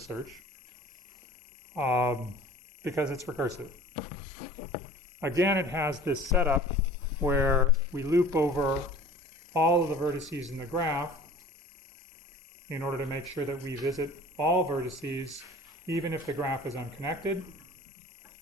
search because it's recursive. Again, it has this setup where we loop over all of the vertices in the graph in order to make sure that we visit all vertices, even if the graph is unconnected.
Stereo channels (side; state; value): both; normal; correlation 0.45